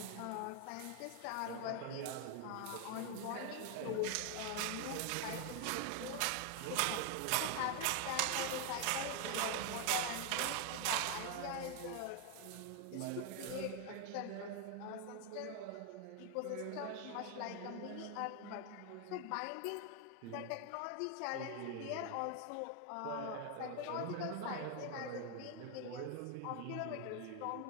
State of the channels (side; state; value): both; different; correlation 0.01